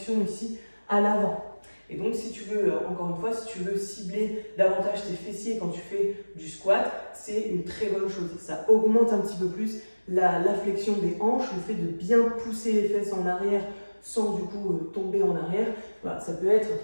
ici à l'avant. Et donc si tu veux, encore une fois, si tu veux cibler davantage tes fessiers quand tu fais du squat, c'est une très bonne chose. Ça augmente un petit peu plus la flexion des hanches, le fait de bien pousser les fesses en arrière sans du coup tomber en arrière. Voilà, ça peut être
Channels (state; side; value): inverted; both; correlation -1.00